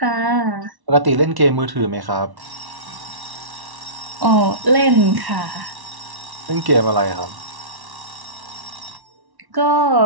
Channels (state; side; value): late; left; 1.1 ms